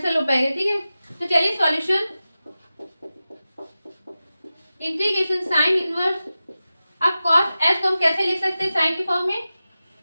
हो पाएगा, ठीक है। तो चलिए सॉल्यूशन इंटीग्रेशन साइन इनवर्स, अब कॉस एस को हम कैसे लिख सकते हैं साइन के फॉर्म में,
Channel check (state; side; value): inverted; both; correlation -0.94